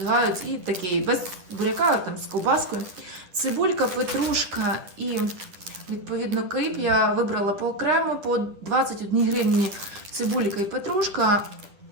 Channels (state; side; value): late; left; 10 ms